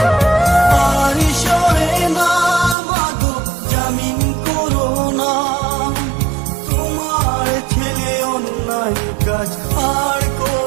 আর সহে না মাগো জামিন করো না, তোমার ছেলে অন্যায় কাজ আর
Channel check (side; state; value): left; drops out; at 2.8 s